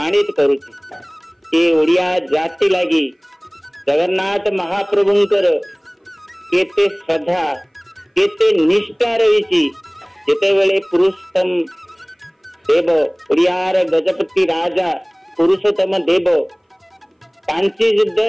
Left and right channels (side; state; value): both; identical; correlation 1.00